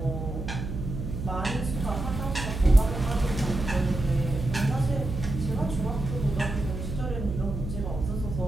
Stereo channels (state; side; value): noise; right; hum, 5 dB below the sound